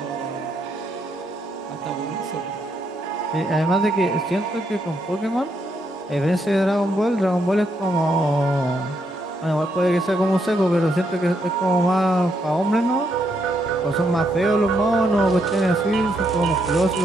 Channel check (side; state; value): both; normal; correlation 0.77